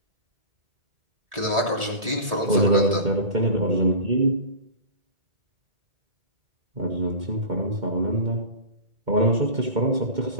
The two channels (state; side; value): late; left; 1.7 ms